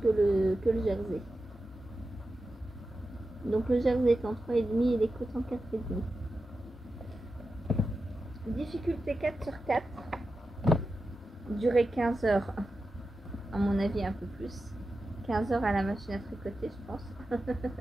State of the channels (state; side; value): normal; both; correlation 0.91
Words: que le jersey. Donc le jersey est en 3,5 et les côtes en 4,5. Difficulté 4 sur 4. Durée 15 heures. À mon avis, un peu plus. 15 heures à la machine à tricoter, je pense.